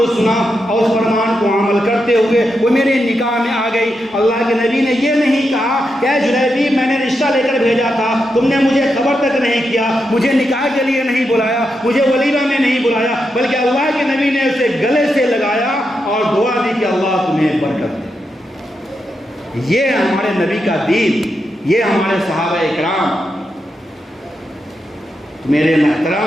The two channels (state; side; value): normal; both; correlation 0.85